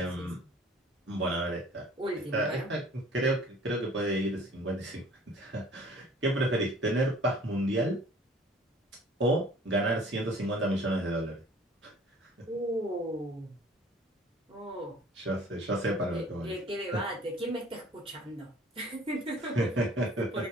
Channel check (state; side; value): normal; both; correlation 0.52